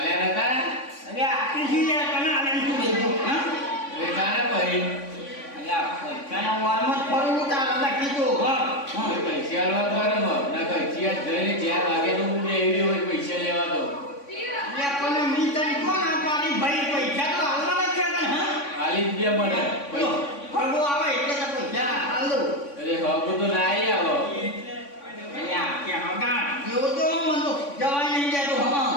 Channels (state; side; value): late; right; 3.5 ms